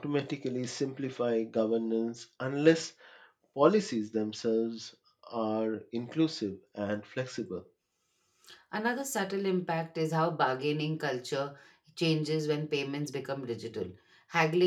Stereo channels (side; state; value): both; identical; correlation 1.00